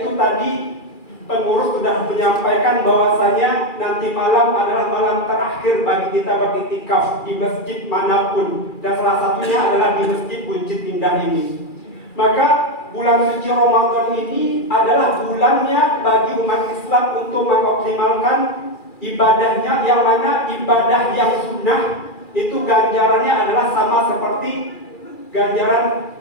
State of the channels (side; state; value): right; late; 2.4 ms